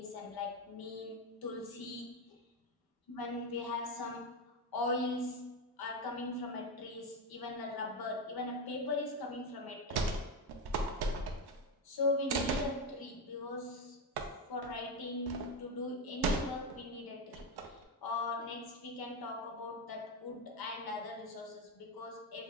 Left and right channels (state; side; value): normal; both; correlation 0.11